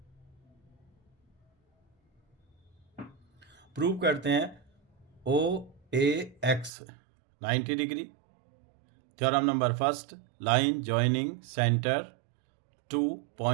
प्रूव करते हैं O A X 90 degree. Theorem number first, line joining centre to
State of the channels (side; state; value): left; drops out; at 6.7 s